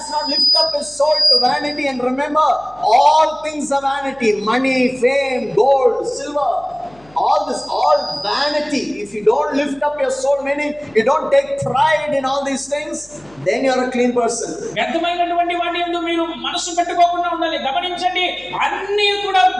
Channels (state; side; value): noise; left; hum, 28 dB below the sound